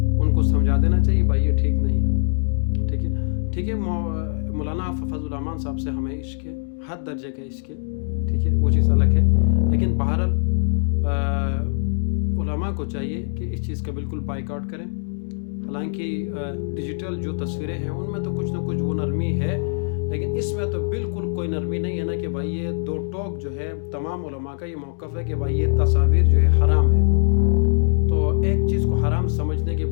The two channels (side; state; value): right; silent; digital silence